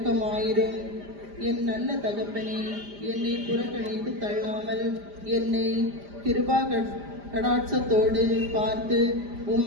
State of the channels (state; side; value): late; left; 5.0 ms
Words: என் நல்ல தகப்பனே, என்னை புறக்கணித்து தள்ளாமல் என்னை கிருபா கடாட்சத்தோடு பார்த்து